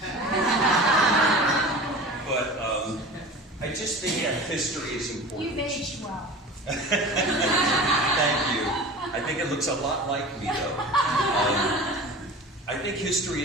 But I just think that history is important. You've aged well. Thank you. I think it looks a lot like me, though. I think history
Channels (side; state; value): both; normal; correlation 0.36